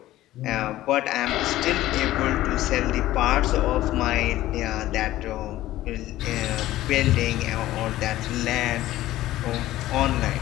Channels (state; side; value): quieter; right; 15.3 dB